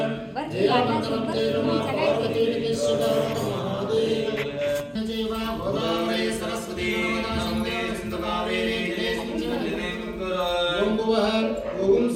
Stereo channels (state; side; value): identical; both; correlation 1.00